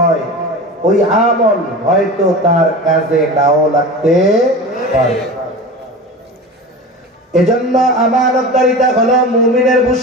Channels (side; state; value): both; normal; correlation 0.31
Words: ওই আমল হয়তো তার কাজে নাও লাগতে পারে। এজন্য আমানতদারিতা হলো মুমিনের